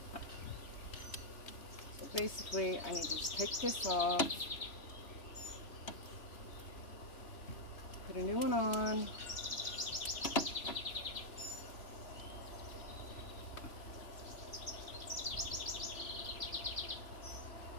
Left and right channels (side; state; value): right; late; 3.0 ms